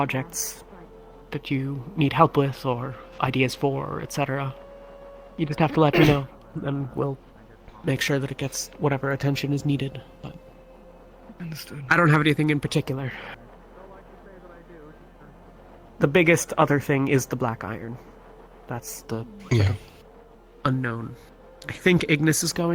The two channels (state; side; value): identical; both; correlation 1.00